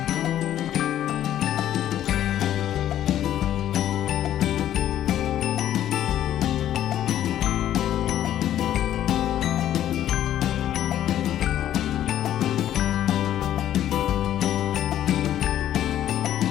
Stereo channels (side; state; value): right; quieter; 11.7 dB